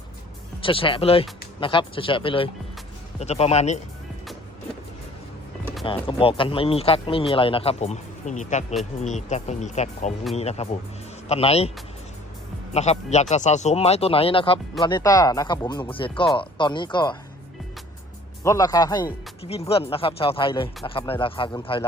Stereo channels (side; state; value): both; normal; correlation 0.52